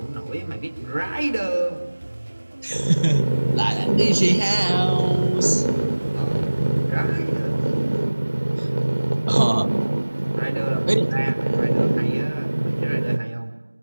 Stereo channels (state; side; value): inverted; both; correlation -1.00